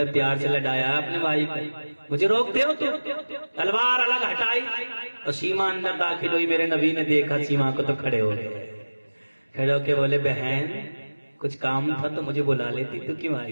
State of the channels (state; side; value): inverted; both; correlation -1.00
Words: پیار سے لڑایا ہے اپنے بھائی کو، مجھے روکتے ہو تو؟ تلوار الگ ہٹائی اور سیما اندر داخل ہوئی۔ میرے نبی نے دیکھا سیما کو تو کھڑے ہو گئے، کھڑے ہو کے بولے بہن کچھ کام تھا تو مجھے بلا لیتی، تو کیوں